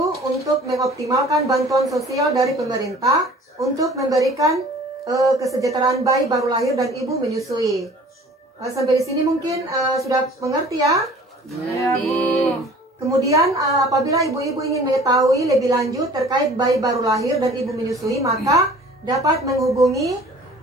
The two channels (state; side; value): normal; both; correlation 0.48